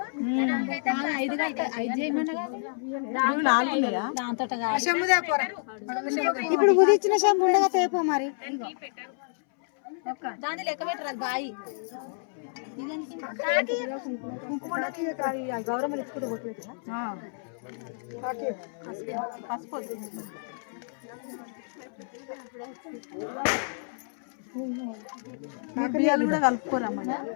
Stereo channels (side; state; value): right; silent; 59 dB below the other